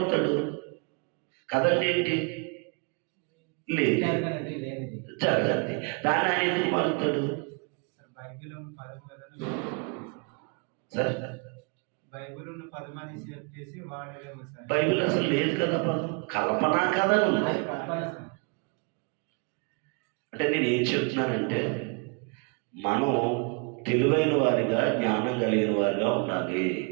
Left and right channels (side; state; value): left; quieter; 35.2 dB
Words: కథ అంటే ఏంటి? లేదు, జరగండి. దాని ఆయన ఎందుకు మారుతాడు? సార్ బైబిల్ అసలు లేదు కదా పదం, కల్పనా కథ ఉంది. అంటే నేను ఏం చెప్తున్నానంటే మనం తెలివైన వారిగా, జ్ఞానం కలిగిన వారిగా ఉండాలి.